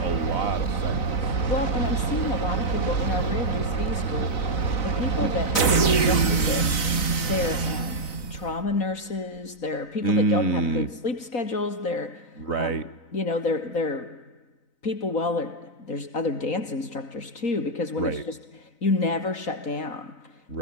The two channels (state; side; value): late; right; 4.0 ms